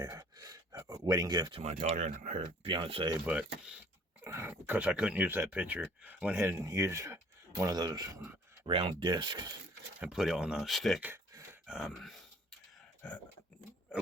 wedding gift to my daughter and her fiance, but because I couldn't use that picture, I went ahead and used one of those round discs and put it on a stick. I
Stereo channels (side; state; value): both; normal; correlation 0.55